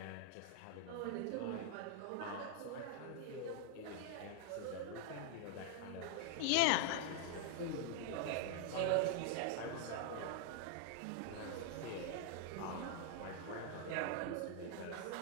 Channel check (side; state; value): both; different; correlation 0.00